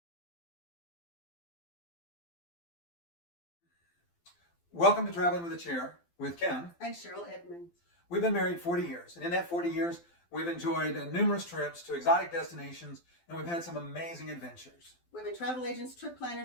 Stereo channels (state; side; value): late; right; 12 ms